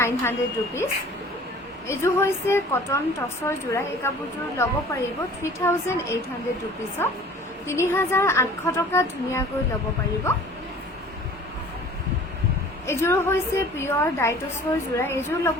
ৰুপিছ এইযোৰ হৈছে কটন টচৰ যোৰা এই কাপোৰযোৰ ল'ব পাৰিব 3800 ৰুপিছত 3800 টকা ধুনীয়াকৈ ল'ব পাৰিব এইযোৰ হৈছে পিয়ৰ ডাইটছৰ যোৰা এইযোৰ ল'ব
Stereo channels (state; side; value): normal; both; correlation 0.47